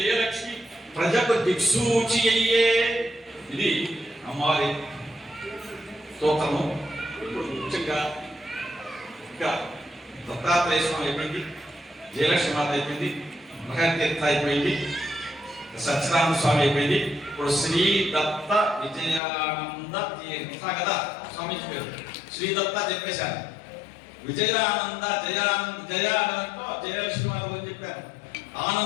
ప్రజకు దిక్సూచి అయ్యే. ఇది అమ్మవారి స్తోత్రము. ఇప్పుడు ముఖ్యంగా ఇంకా దత్తాత్రేయ స్వామి అయిపోయింది, జయలక్ష్మీమాత అయిపోయింది, మహాతీర్థ అయిపోయింది, సత్యనారాయణ స్వామి అయిపోయింది. ఇప్పుడు శ్రీ దత్త విజయానంద తీర్థ కదా స్వామిజీ పేరు. శ్రీ దత్త చెప్పేశాను, విజయానంద జయానందంతో జయలక్ష్మీమాత గురించి చెప్పాను,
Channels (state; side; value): drops out; right; at 19.2 s